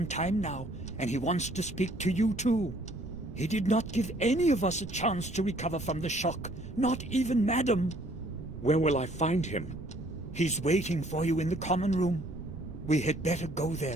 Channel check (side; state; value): right; noise; rumble, 13 dB below the sound